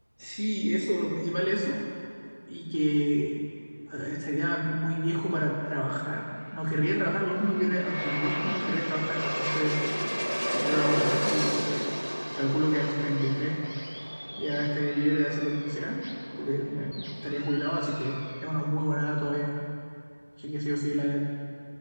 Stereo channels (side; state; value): both; inverted; correlation -1.00